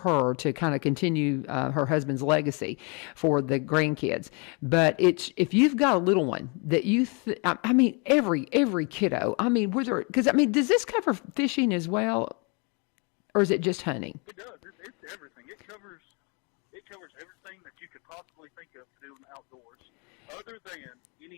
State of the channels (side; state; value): right; quieter; 33.3 dB